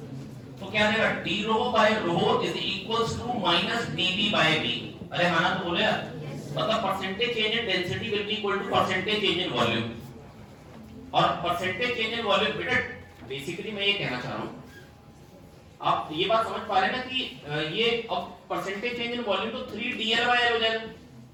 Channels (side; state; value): both; identical; correlation 1.00